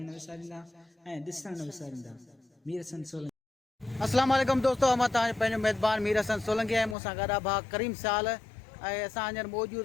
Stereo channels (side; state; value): right; drops out; at 7.0 s